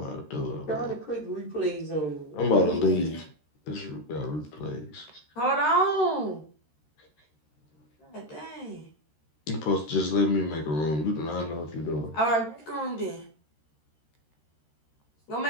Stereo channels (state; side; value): late; right; 13 ms